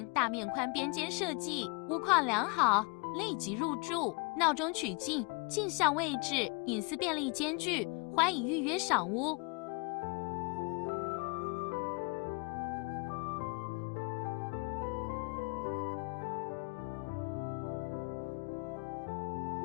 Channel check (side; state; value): right; quieter; 31.3 dB